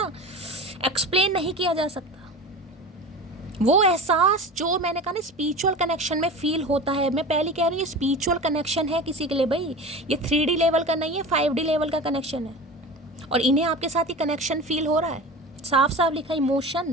एक्सप्लेन नहीं किया जा सकता। वो एहसास जो मैंने कहा ना स्पिरिचुअल कनेक्शन में फील होता है। मैं पहले कह रही हूँ स्पिरिचुअल कनेक्शन है किसी के लिए भाई, ये 3D लेवल का नहीं है, 5D लेवल का कनेक्शन है। और इन्हें आपके साथ ही कनेक्शन फील हो रहा है, साफ साफ लिखा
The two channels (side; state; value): both; normal; correlation 0.32